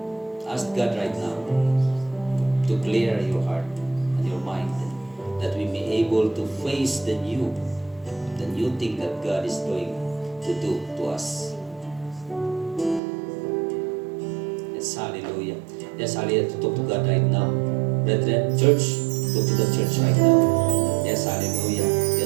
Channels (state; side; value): drops out; left; at 13.0 s